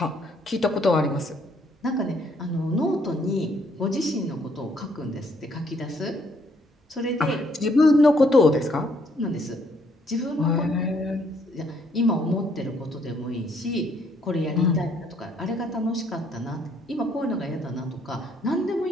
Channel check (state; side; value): normal; both; correlation 0.68